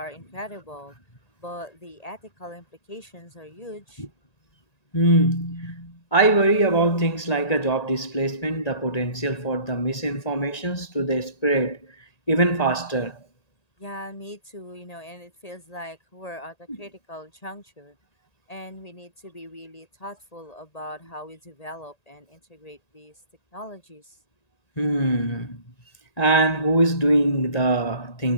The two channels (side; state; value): right; late; 1.9 ms